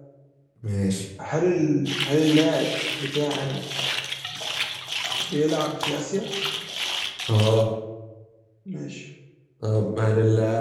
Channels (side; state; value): both; identical; correlation 1.00